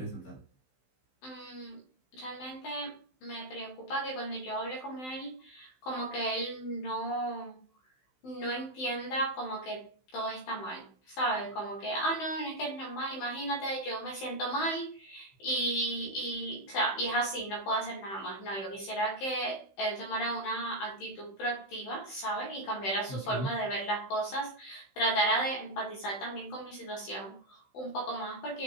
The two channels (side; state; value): right; late; 15 ms